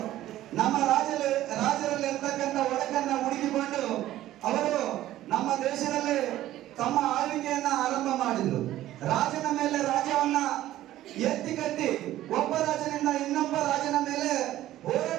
ನಮ್ಮ ರಾಜರಲ್ಲಿ ಇರ್ತಕ್ಕಂಥ ಒಡಕನ್ನ ಹುಡುಕಿಕೊಂಡು ಅವರು ನಮ್ಮ ದೇಶದಲ್ಲಿ ತಮ್ಮ ಆಳ್ವಿಕೆಯನ್ನ ಆರಂಭ ಮಾಡಿದ್ರು. ರಾಜನ ಮೇಲೆ ರಾಜ್ಯವನ್ನ ಎತ್ತಿ ಕಟ್ಟಿ ಒಬ್ಬ ರಾಜನಿಂದ ಇನ್ನೊಬ್ಬ ರಾಜನ ಮೇಲೆ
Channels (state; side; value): quieter; left; 14.2 dB